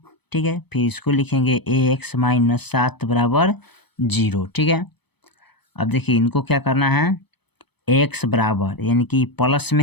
ठीक है, फिर इसको लिखेंगे एक्स माइनस 7 बराबर 0। ठीक है, अब देखिए इनको क्या करना है, एक्स बराबर यानी कि प्लस में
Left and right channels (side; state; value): right; late; 0.98 ms